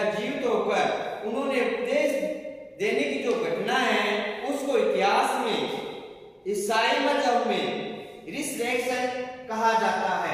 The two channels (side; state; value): both; identical; correlation 1.00